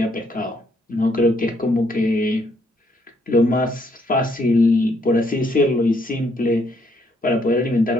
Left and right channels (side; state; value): both; normal; correlation 0.71